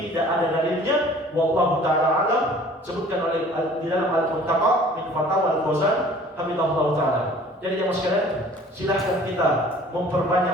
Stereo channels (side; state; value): both; normal; correlation 0.50